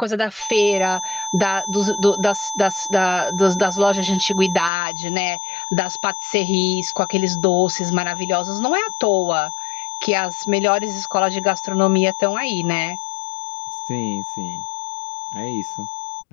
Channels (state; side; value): drops out; right; at 4.7 s